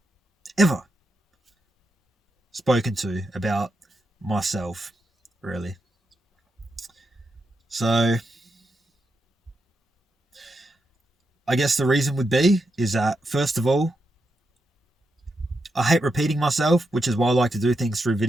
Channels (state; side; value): normal; both; correlation 0.85